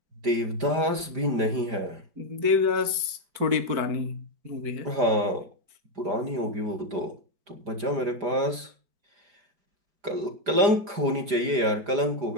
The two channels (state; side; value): late; left; 4.9 ms